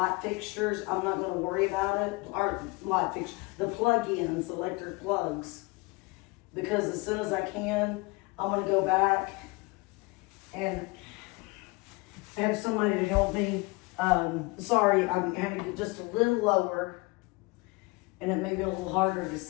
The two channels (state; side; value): quieter; right; 25.5 dB